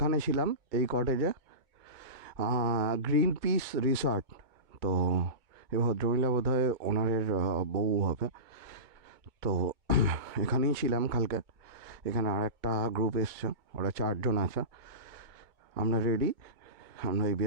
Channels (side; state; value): left; late; 2.2 ms